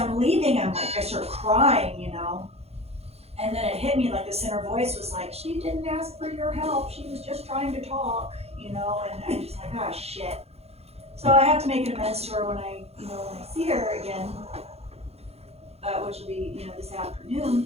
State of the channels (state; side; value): late; left; 0.30 ms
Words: leaving, I start crying, you know. And then it hit me like this inner voice was like, she didn't ask for your help. She was just trying to talk, you know. And I'm just like, ah, shit. So I have to make an amends to her when I see her again, which will be, this